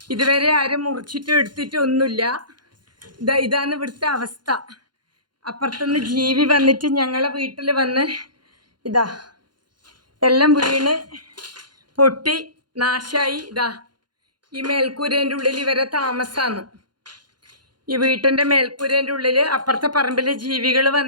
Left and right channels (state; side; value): late; left; 0.71 ms